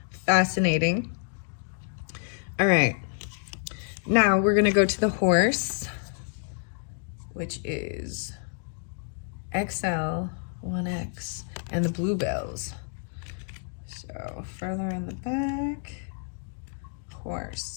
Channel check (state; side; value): silent; right; digital silence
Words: fascinating. All right, now we're gonna go to the horse, which is XL 1X, and the bluebells. So further in the back,